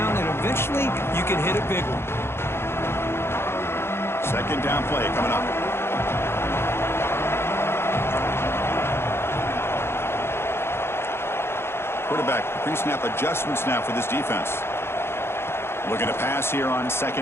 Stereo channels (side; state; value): right; late; 0.12 ms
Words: and eventually you can hit a big one. Second down play coming up. Quarterback pre-snap adjustments now for this defense. Looking to pass here on